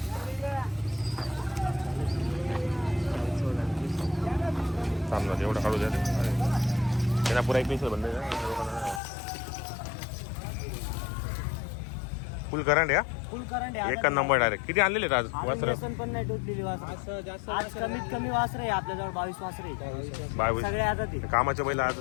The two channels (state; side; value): drops out; right; at 9.0 s